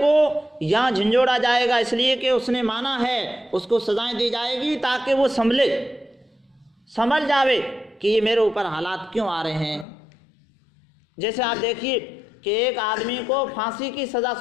یہاں جھنجھوڑا جائے گا اس لیے کہ اس نے مانا ہے، اس کو سزائیں دی جائے گی تاکہ وہ سمجھ جاوے کہ یہ میرے اوپر حالات کیوں آ رہے ہیں۔ جیسے آپ دیکھیے کہ ایک آدمی کو پھانسی کی سزا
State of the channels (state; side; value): drops out; right; at 9.9 s